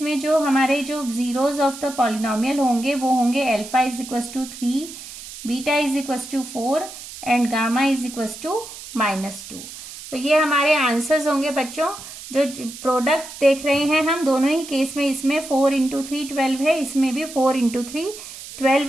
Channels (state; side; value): noise; right; hiss, 13 dB below the sound